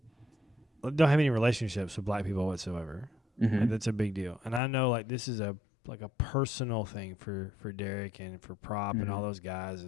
have any relationships with black people whatsoever. Like, that's a big deal. And I know like this is a personal thing for Derek and for Prop and all those guys.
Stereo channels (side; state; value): right; drops out; at 4.6 s